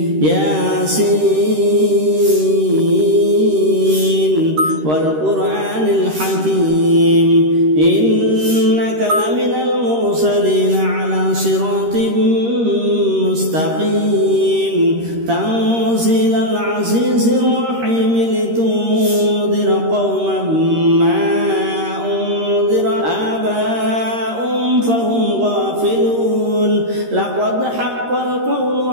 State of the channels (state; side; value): late; left; 13 ms